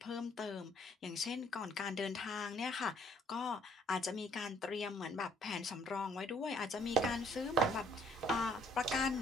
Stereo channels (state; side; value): normal; both; correlation 0.63